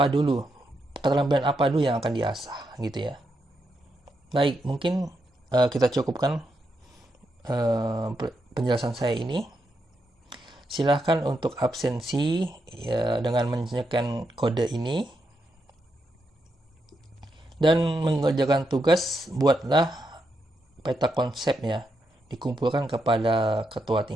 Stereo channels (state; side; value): normal; both; correlation 0.83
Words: dulu, keterampilan apa dulu yang akan diasah gitu ya. Baik, mungkin kita cukupkan penjelasan saya ini. Silahkan untuk absensi ya, dengan menyesuaikan kode ini. Dan mengerjakan tugas, buatlah peta konsep ya, dikumpulkan kepada ketua